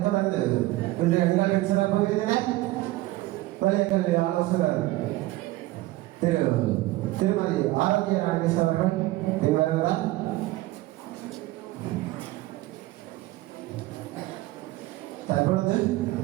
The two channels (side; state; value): left; quieter; 18.0 dB